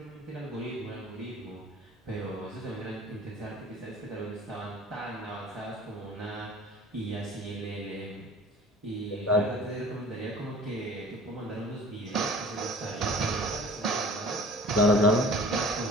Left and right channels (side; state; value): both; normal; correlation 0.45